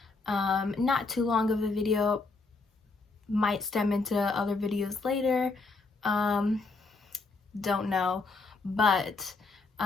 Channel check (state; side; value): quieter; right; 3.8 dB